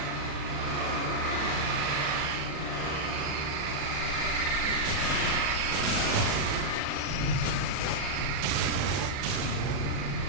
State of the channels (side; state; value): left; late; 36 ms